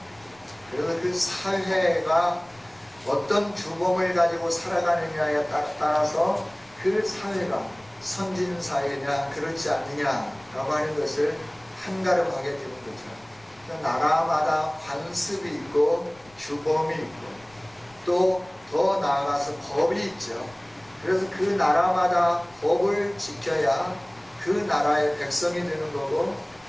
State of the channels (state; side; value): noise; left; rumble, 29 dB below the sound